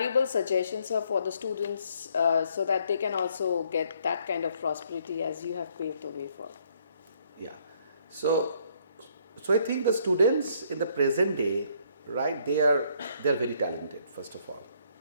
suggestions, sir, for the students so that they can also get that kind of prosperity as you have paved the way for? Yeah, so I think the students in the present day, right, they are very talented, first of all,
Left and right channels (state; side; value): inverted; both; correlation -0.67